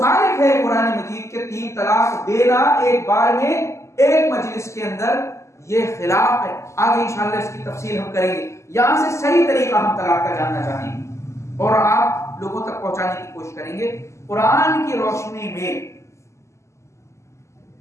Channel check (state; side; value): late; right; 0.13 ms